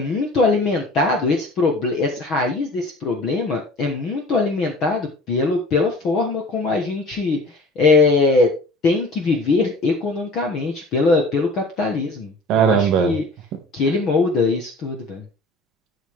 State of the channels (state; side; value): normal; both; correlation 0.44